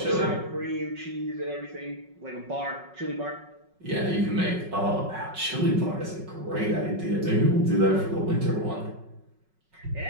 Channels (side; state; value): left; late; 5.4 ms